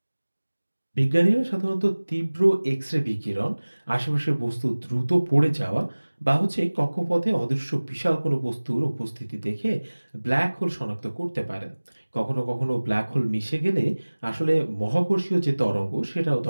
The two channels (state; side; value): inverted; both; correlation -1.00